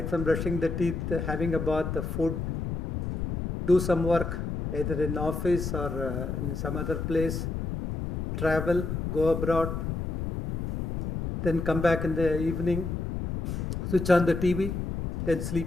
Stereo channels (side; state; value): left; noise; rumble, 3 dB below the sound